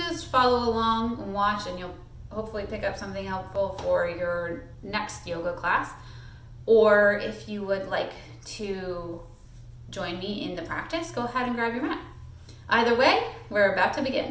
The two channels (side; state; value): both; identical; correlation 1.00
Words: follow along and watch, and you'll hopefully pick up something helpful for your next yoga class. Or if you would like to join me in the practice, go ahead and grab your mat. Either way, we're about to